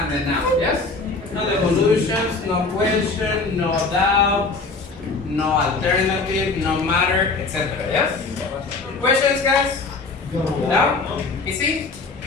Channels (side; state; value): right; quieter; 3.9 dB